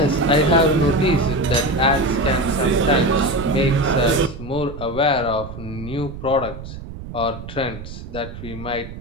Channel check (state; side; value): noise; right; rumble, 12 dB below the sound